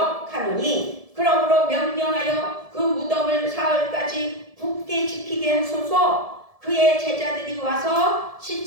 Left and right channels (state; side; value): late; left; 1.7 ms